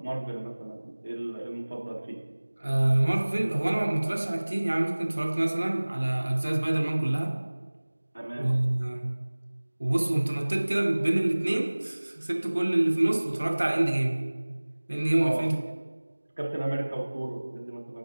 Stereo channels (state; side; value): inverted; both; correlation -1.00